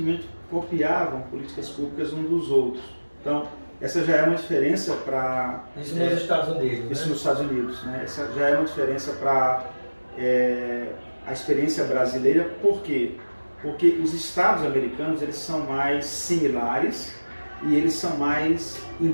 copiavam políticas públicas uns dos outros. Então, essa já é uma diferença para... Isso nos Estados Unidos, Isso né? nos Estados Unidos, né? Essa já é uma diferença para a experiência brasileira. Por quê? Porque os estados americanos eles são mais similares e eles são mais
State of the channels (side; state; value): both; inverted; correlation -1.00